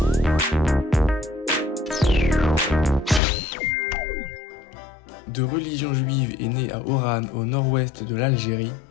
De religion juive et né à Oran au nord-ouest de l'Algérie,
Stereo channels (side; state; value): right; drops out; at 3.2 s